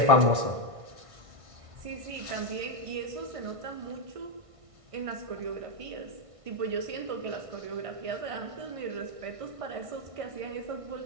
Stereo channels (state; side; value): late; left; 1.6 ms